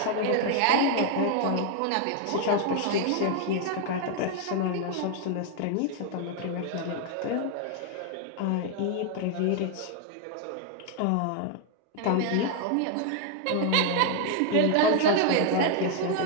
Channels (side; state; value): both; different; correlation 0.00